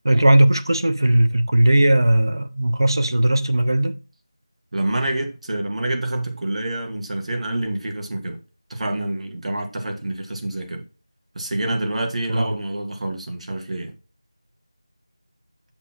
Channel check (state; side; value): inverted; both; correlation -0.97